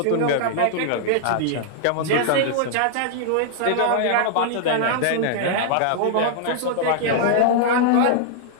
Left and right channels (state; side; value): different; both; correlation -0.01